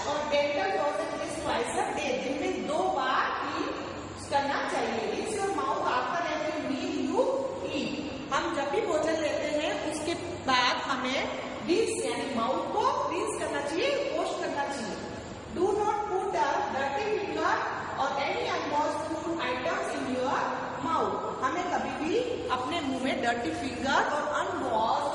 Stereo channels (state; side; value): identical; both; correlation 1.00